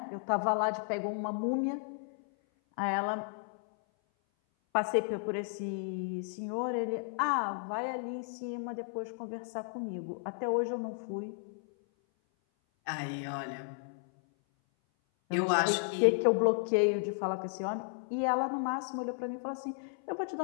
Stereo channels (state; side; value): silent; right; 55 dB below the other